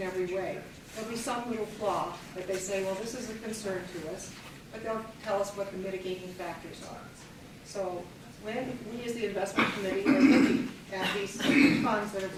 every way. There'll be some little flaw that they say, well, this is a concern to us, but they'll tell us what the mitigating factors are. So when we as the investment committee are looking at these funds that are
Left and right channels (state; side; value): identical; both; correlation 1.00